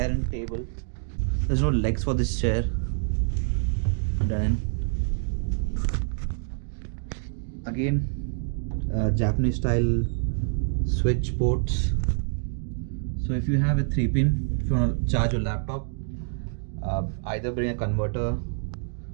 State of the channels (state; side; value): silent; left; digital silence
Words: and table. There's no legs for this chair. Then again, Japanese style switch ports. So if you have a 3-pin, if you want to charge your laptop, either bring a converter